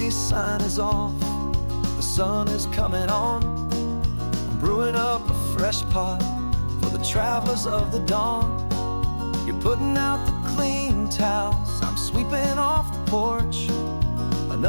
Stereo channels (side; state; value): both; inverted; correlation -1.00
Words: sign is off. The sun is coming on. I'm brewing up a fresh pot for the travelers of the dawn. You're putting out the clean towels, I'm sweeping off the porch.